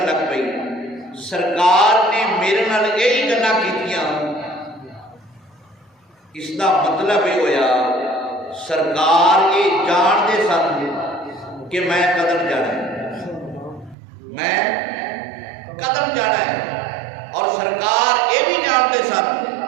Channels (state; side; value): drops out; left; at 14.0 s